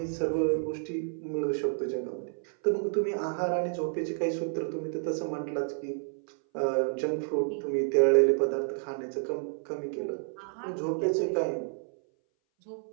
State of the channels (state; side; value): silent; left; 58 dB below the other